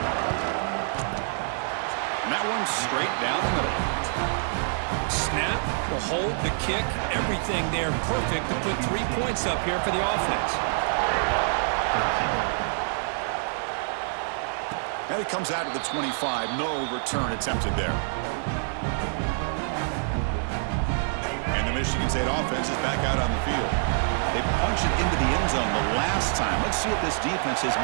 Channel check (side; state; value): left; silent; 61 dB below the other